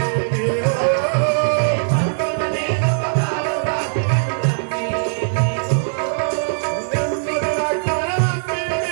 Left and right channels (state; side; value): silent; left; 62 dB below the other